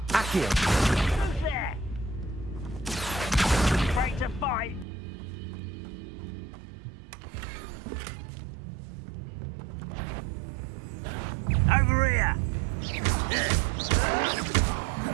Accio. Who's there? Afraid to fight? Over here!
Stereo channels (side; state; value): left; drops out; at 4.9 s